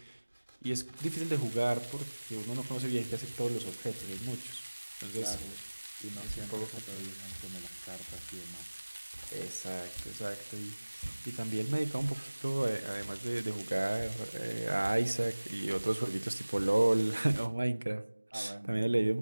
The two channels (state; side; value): inverted; both; correlation -1.00